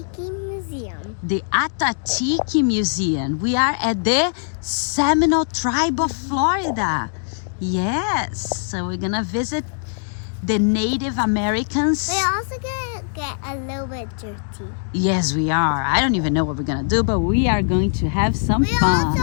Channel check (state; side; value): silent; right; digital silence